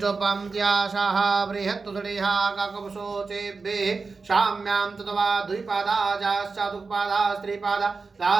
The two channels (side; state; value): left; quieter; 4.4 dB